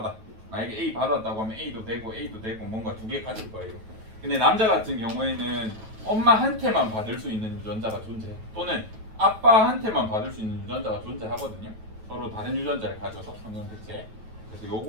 만약에 A 받았다고 하면 A도 되고 뭔가 두 개 가질 거예요. 근데 남자 같은 경우에는 엄마한테만 받을 수 있는 유전자가 존재해. 또는 아빠한테만 받을 수 있는 유전자가 존재하거든요. 서로 다른 유전자를 가져서 성염색체. 그래서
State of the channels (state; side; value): late; left; 9.2 ms